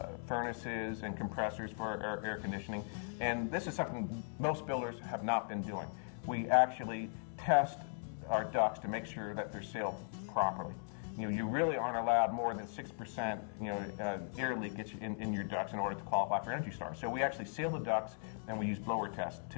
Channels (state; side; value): silent; right; digital silence